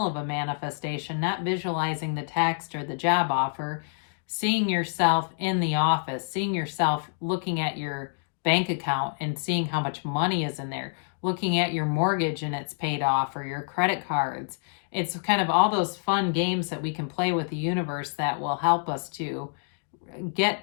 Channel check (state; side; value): silent; right; digital silence